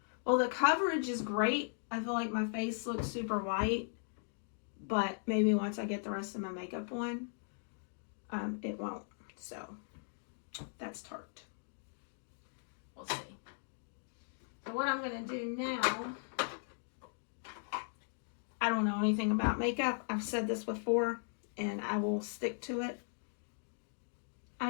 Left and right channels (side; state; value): right; silent; digital silence